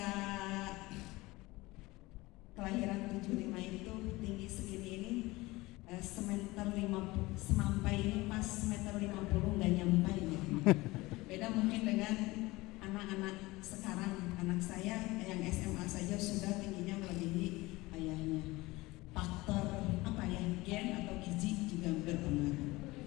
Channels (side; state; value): right; quieter; 20.9 dB